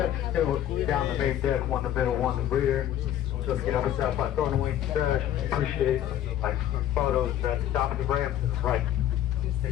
still down the main deck, one in the middle, one in the rear. So if you get up and stop by throwing away the trash, we appreciate it. Like photos at the top of the ramp to the right.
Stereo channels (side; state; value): right; quieter; 11.6 dB